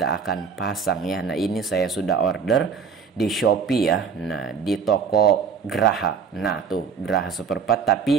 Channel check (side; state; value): left; quieter; 6.1 dB